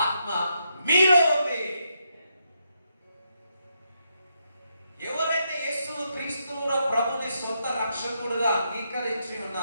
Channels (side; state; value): both; inverted; correlation -0.80